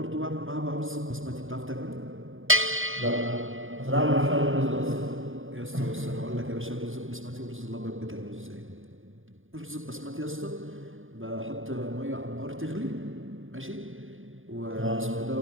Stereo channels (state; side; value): late; left; 0.59 ms